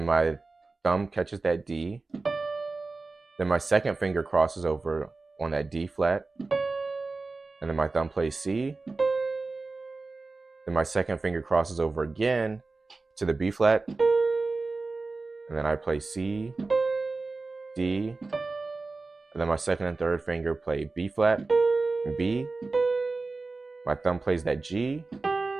my thumb catches that D. Then my second finger crosses over on that D flat. And then my thumb plays C. Then my second finger crosses over again to the B flat. And then I play C, D. And then my second and third finger play B flat and B. My thumb plays that G.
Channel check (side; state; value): left; quieter; 3.7 dB